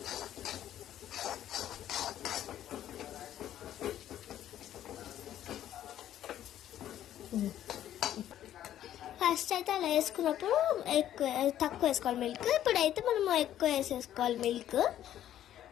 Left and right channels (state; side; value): quieter; right; 11.7 dB